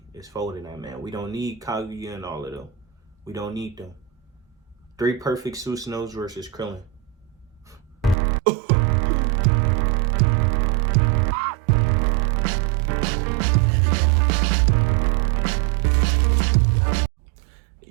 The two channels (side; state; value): left; drops out; at 8.2 s